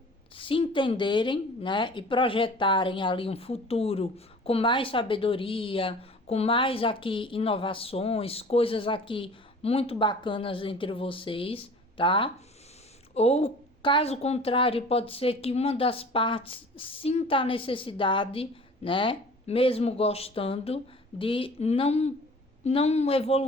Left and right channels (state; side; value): normal; both; correlation 0.44